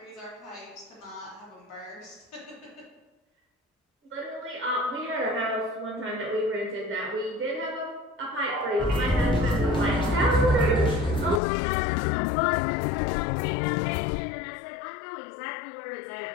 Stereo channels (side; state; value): right; drops out; at 11.4 s